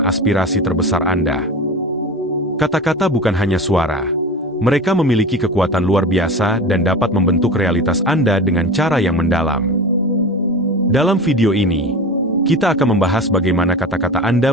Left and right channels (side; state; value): both; normal; correlation 0.31